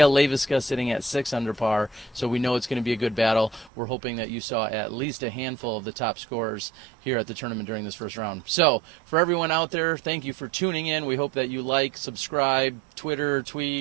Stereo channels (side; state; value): left; drops out; at 3.7 s